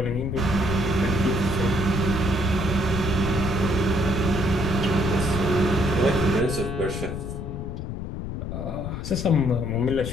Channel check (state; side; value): noise; left; rumble, 5 dB below the sound